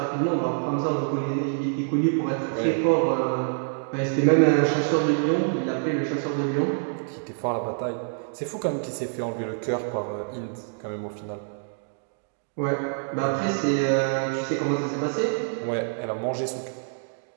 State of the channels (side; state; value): left; silent; digital silence